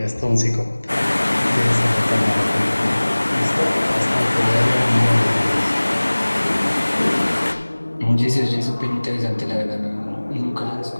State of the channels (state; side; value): inverted; both; correlation -1.00